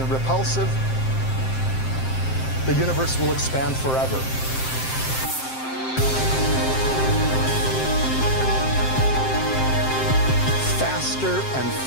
repulsive, the universe will expand forever. Faster and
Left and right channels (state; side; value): late; right; 7.6 ms